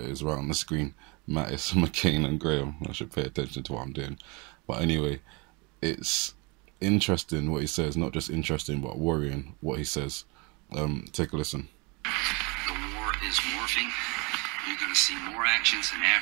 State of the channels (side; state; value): left; quieter; 29.1 dB